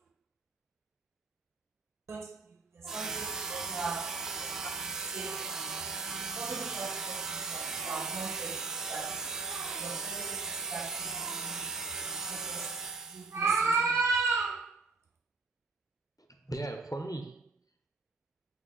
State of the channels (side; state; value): left; quieter; 3.9 dB